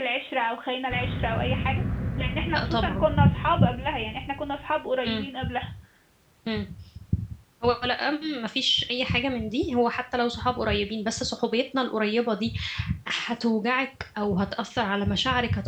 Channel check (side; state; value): both; identical; correlation 1.00